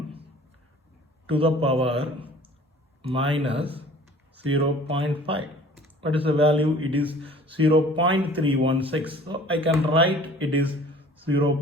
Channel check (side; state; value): both; normal; correlation 0.49